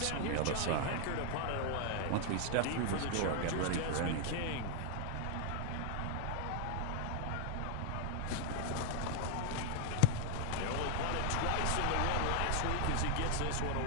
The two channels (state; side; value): different; both; correlation 0.00